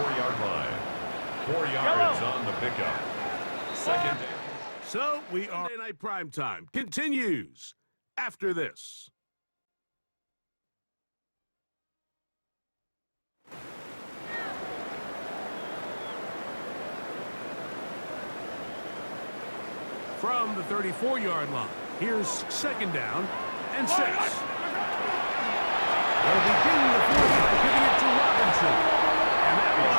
line. 4 yards on the pickup. 2nd down. So we are Monday Night Primetime continues after this. From the 34-yard line, here's 2nd down and 6. They'll begin the 4th by giving it to Robinson. And that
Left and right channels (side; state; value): both; inverted; correlation -1.00